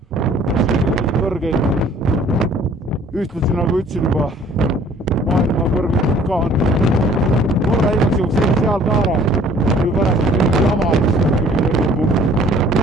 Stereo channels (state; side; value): normal; both; correlation 0.55